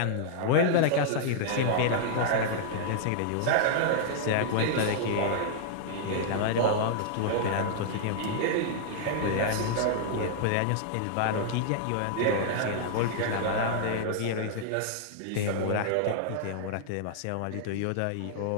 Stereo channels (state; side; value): different; both; correlation -0.01